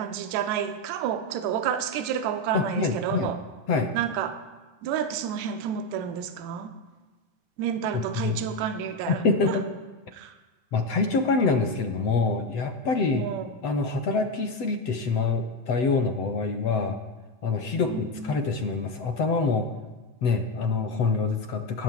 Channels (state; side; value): late; right; 7.9 ms